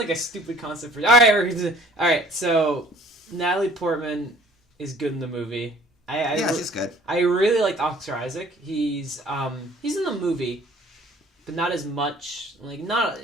a stupid concept for. All right. So Natalie Portman is good in the movie. She's good. I really liked Oscar Isaac. He's in the movie, but not as much.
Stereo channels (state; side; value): normal; both; correlation 0.52